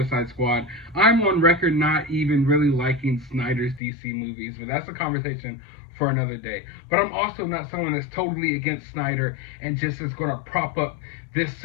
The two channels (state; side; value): drops out; right; at 3.8 s